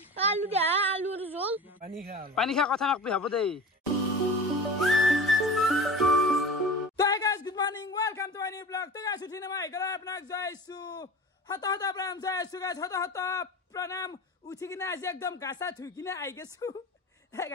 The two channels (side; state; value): both; normal; correlation 0.35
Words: আলু দে আলুৰ জোল পানী খা কথা নকবি হ'ব দেই তো guys good morning welcome to my new blog তো গাইস উঠিনে মই গলা আপোনাক জয়ছু হত হত প্ৰণাম জয়ছু গাইস হত হত প্ৰণাম উঠি কিনে আজি একদম গাছা ধুই কিনে আই গেছু হে